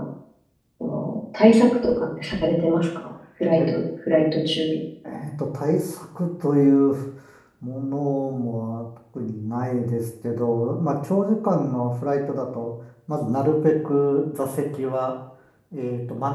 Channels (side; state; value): both; identical; correlation 1.00